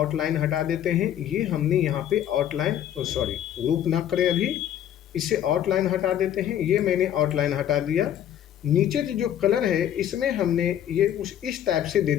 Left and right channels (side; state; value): right; quieter; 10.7 dB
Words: हटा देते हैं। ये हमने यहाँ पे आउटलाइन सॉरी ग्रुप ना करें, अभी इसे आउटलाइन हटा देते हैं। ये मैंने आउटलाइन हटा दिया। नीचे जो कलर है इसमें हमने ये कुछ इस टाइप से दे